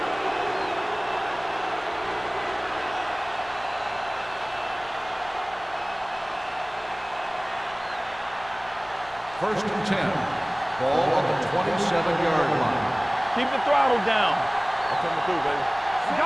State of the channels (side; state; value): left; noise; rumble, 25 dB below the sound